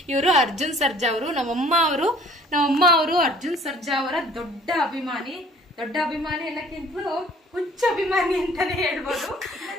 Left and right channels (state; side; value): normal; both; correlation 0.54